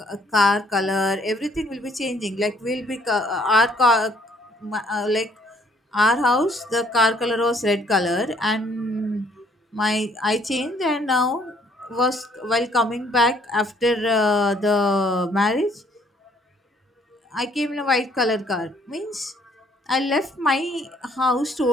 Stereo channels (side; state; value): both; normal; correlation 0.64